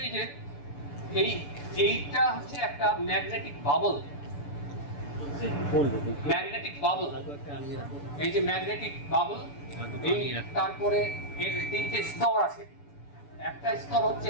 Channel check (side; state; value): right; late; 6.9 ms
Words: এই যে এইটা হচ্ছে একটা ম্যাগনেটিক বাবল। ম্যাগনেটিক বাবল, এই যে ম্যাগনেটিক বাবল, এই তারপরে এর তিনটে স্তর আছে। একটা স্তর